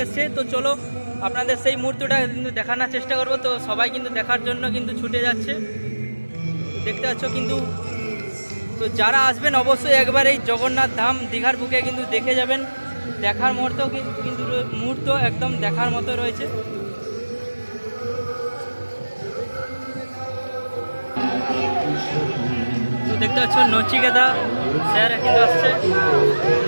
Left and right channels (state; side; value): inverted; both; correlation -1.00